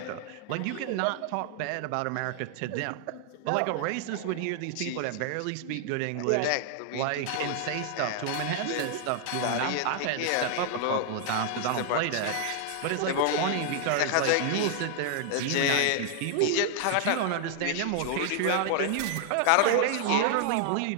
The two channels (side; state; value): both; different; correlation 0.00